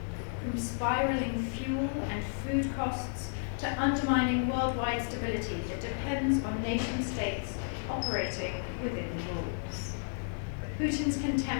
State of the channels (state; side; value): silent; right; digital silence